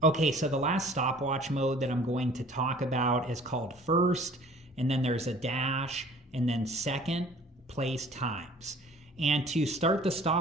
Okay, so the last stopwatch mode that I'm going to talk about is called first, and then there's a dash, and then second place times. And to start the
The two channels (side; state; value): both; normal; correlation 0.51